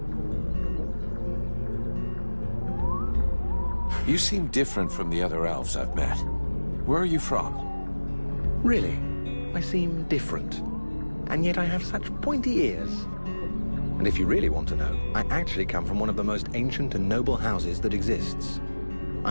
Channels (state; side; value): inverted; both; correlation -1.00